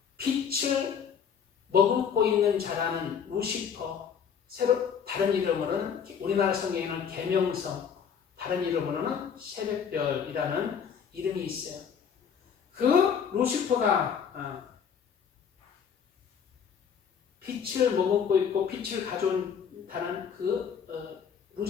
빛을 머금고 있는 자라는 루시퍼, 다른 이름으로는 우리나라 성경에는 계명성, 다른 이름으로는 새벽별이라는 이름이 있어요. 그 루시퍼가 빛을 머금고 있고 빛을 가져온다는 그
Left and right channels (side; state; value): right; quieter; 7.2 dB